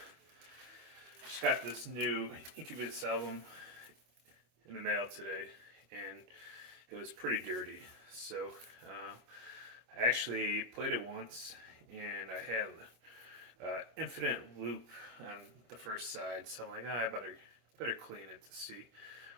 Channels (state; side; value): late; left; 25 ms